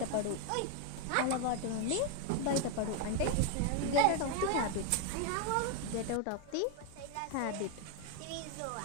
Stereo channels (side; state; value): both; different; correlation 0.01